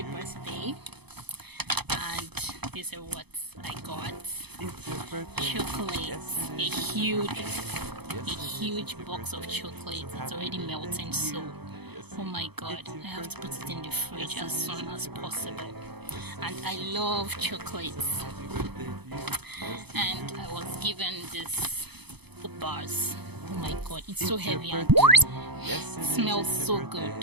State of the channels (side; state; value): left; late; 0.98 ms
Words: birthday. And these are what I got. Chocolate. A huge box of chocolate. It's already melting, so oh my god, I have to put it in the fridge as soon as possible. And I love chocolates. And I was given this bars. Oh my god, it's so heavy and smells so good.